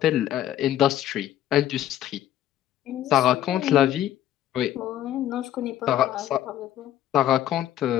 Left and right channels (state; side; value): quieter; right; 12.0 dB